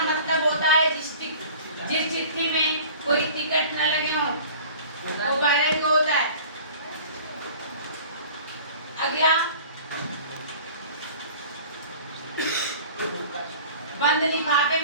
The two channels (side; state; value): both; inverted; correlation -0.44